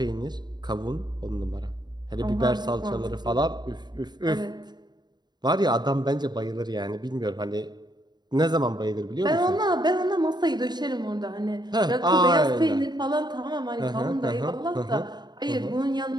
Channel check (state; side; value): late; left; 0.20 ms